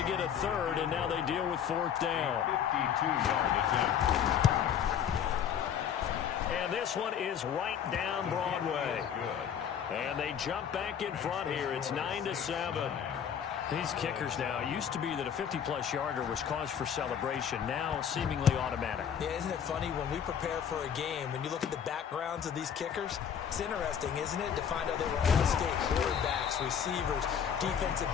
get a third, and now they deal with fourth down. 52-yard attempt. And this one is right down Broadway. And they jump back in front here. It's 9-7. These kickers now, it used to be that a 50-plus yarder was cause for celebration. Now, seemingly automatic. Yeah, isn't it funny when we prepare for a game, when you look at the backgrounds of these kickers, it's interesting, isn't it, to find out they were all-state quarterbacks, receivers, defensive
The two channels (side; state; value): right; quieter; 8.4 dB